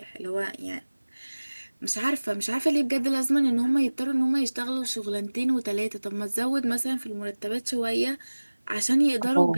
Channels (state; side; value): inverted; both; correlation -1.00